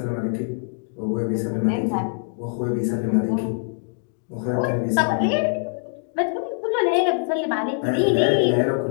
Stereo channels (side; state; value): right; silent; 63 dB below the other